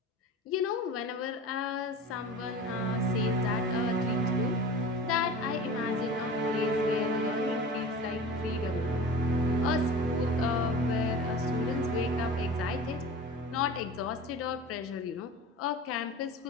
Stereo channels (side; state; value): both; normal; correlation 0.36